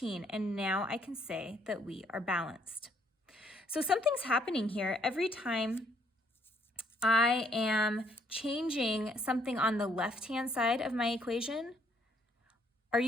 And now I can say that we are balanced. So something's happening here. Every time I am changing something on the left-hand side of my equation, are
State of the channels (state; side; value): normal; both; correlation 0.67